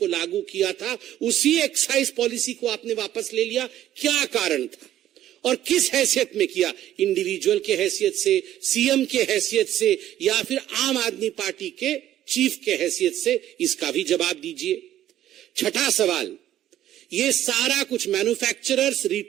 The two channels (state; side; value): quieter; left; 12.5 dB